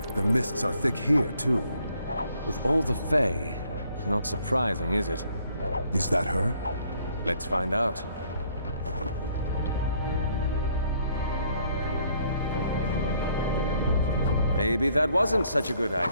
The mists are thick here, too. With all the Fae, not surprising, is it? Is that her? Let's find out. Maybe that wasn't such a good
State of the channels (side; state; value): both; inverted; correlation -0.65